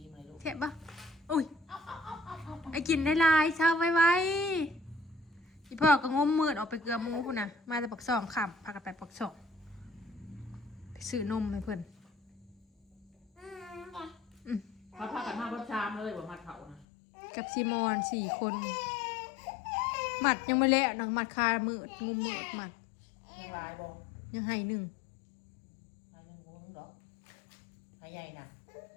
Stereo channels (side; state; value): right; drops out; at 16.9 s